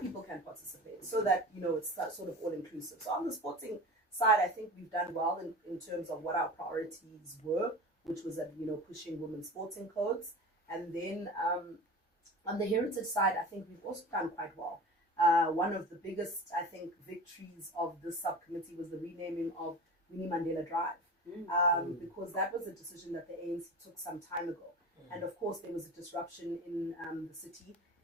can participate, so that, you know, it's sort of all inclusive. So on the sporting side, I think we've done well in terms of what our priorities were, which was that, you know, pushing women's sporting codes. And then on the heritage side, I think we've also done quite well. One of the biggest, I think, victories of this subcommittee was the renaming of Winnie Mandela Drive, because that was a decision that the ANC took some time ago. And of course, there was a disruption in the city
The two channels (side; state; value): both; normal; correlation 0.34